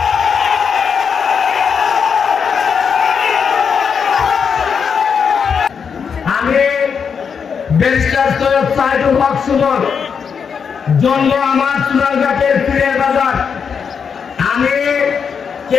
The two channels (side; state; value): right; quieter; 6.5 dB